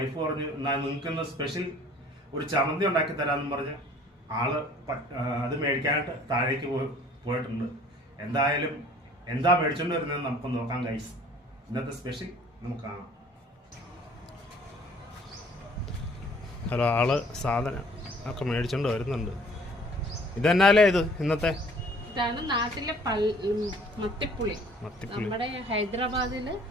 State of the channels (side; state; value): both; normal; correlation 0.54